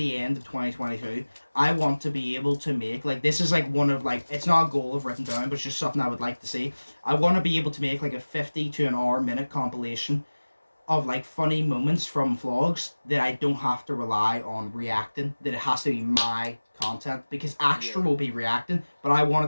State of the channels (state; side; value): inverted; both; correlation -1.00